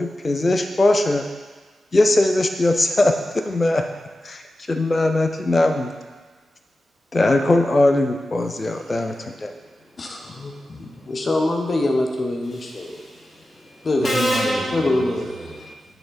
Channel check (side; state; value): both; normal; correlation 0.93